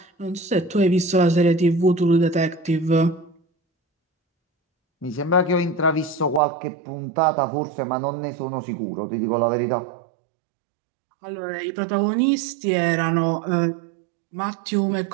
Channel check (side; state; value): left; drops out; at 6.4 s